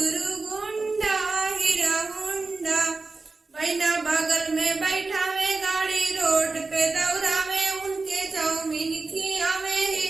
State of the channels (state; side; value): quieter; left; 3.8 dB